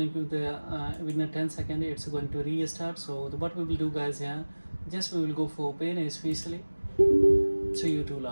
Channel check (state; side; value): inverted; both; correlation -1.00